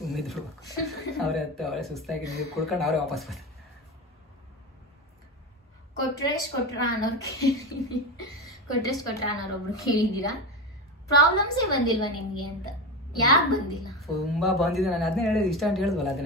ಅವ್ರೆ ಅವಳೆ ಸುಸ್ತಾಗಿ ನೀರು ಕುಡ್ಕೊಂಡು ಅವ್ರೆ ವಾಪಸ್ ಬರ್ತಾರೆ. ಕೊಟ್ರೇಶ್ ಕೊಟ್ರ ಅನ್ನೋರೊಬ್ರು ಕೇಳಿದೀರಾ, ಪ್ರಾಬ್ಲಮ್ಸೇ ಬಂದಿಲ್ವಾ ನಿಮ್ಗೆ ಅಂತ. ಯಾಕೆ ಬಂದಿಲ್ಲ? ತುಂಬಾ ಬಂದಿದೆ, ನಾನು ಅದನ್ನೇ ಹೇಳಿದ್, ಇಷ್ಟ ಅಂತ ಹೇಳಿದ್ವಲ್ಲ,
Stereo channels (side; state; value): both; normal; correlation 0.21